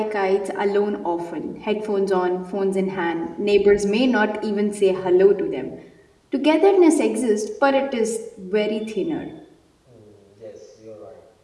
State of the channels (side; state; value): both; identical; correlation 1.00